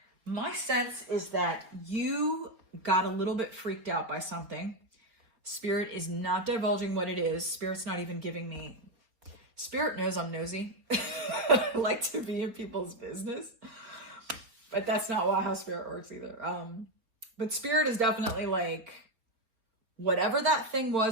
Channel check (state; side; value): late; left; 4.3 ms